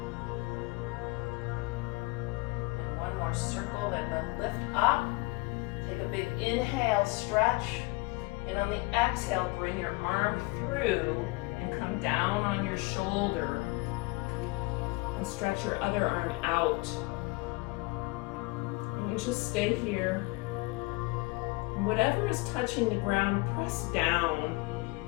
One more circle, then we'll lift up. Take a big inhale, stretch, And on the exhale, bring your arm through and come down on your shoulder. And stretch your other arm out. And just stay here. And whatever is touching the ground, press down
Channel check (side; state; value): right; quieter; 24.4 dB